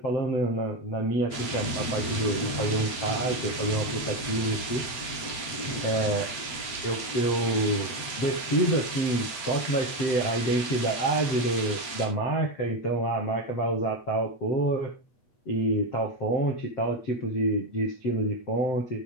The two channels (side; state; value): right; late; 8.0 ms